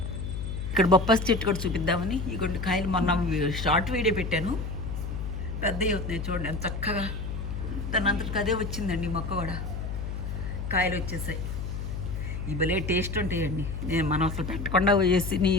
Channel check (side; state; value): left; noise; hum, 5 dB below the sound